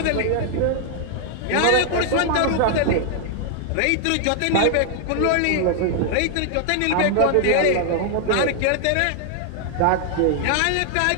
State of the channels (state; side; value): different; both; correlation 0.00